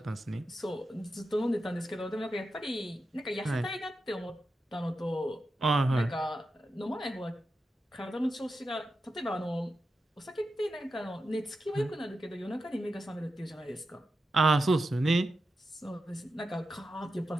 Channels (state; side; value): normal; both; correlation 0.89